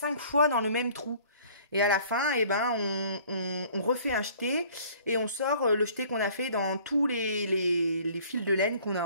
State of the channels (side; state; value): both; inverted; correlation -0.53